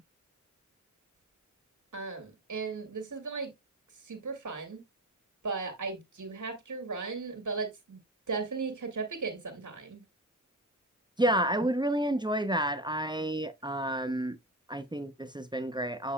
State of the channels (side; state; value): both; normal; correlation 0.26